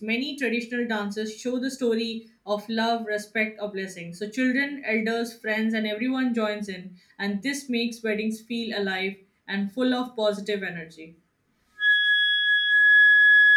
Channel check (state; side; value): identical; both; correlation 1.00